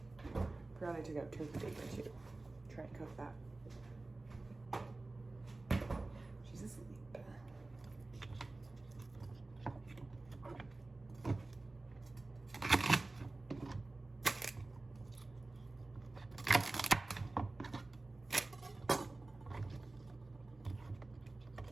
Forgot I took out turkey bacon too. Try and cook that. She's asleep.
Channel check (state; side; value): quieter; left; 3.1 dB